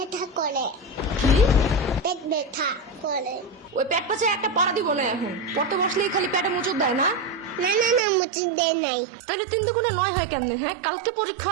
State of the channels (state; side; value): drops out; left; at 8.0 s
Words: করে। কি? পেট ব্যথা করে। ওই পেট পাশে একটা পাড়া দিব না এখন। পড়তে বসলেই খালি পেটে মুচুর দেয় না? না না না, মুচি দেয় নাই। তাহলে 3 দুগুণে 9 হয় কেমনে? হ্যাঁ, কালকে পরীক্ষা